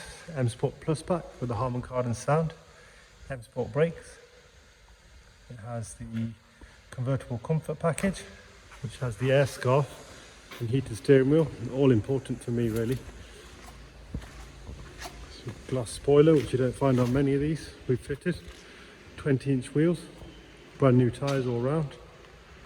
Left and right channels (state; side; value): identical; both; correlation 1.00